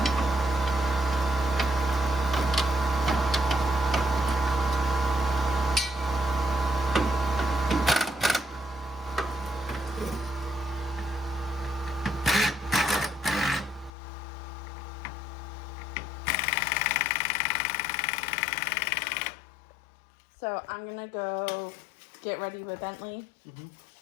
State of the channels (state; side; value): drops out; right; at 13.9 s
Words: So I'm gonna go get ready with Bentley,